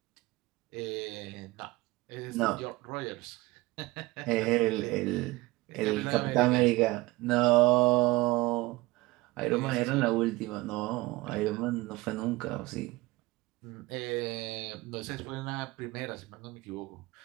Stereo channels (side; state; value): left; quieter; 20.9 dB